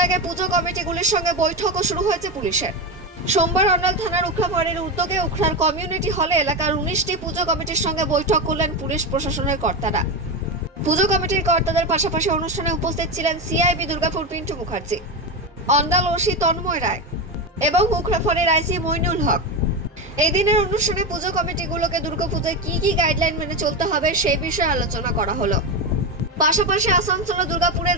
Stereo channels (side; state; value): both; normal; correlation 0.15